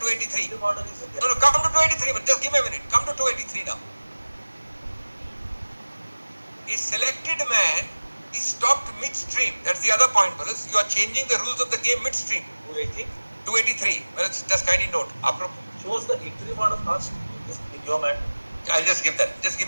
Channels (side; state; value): both; inverted; correlation -1.00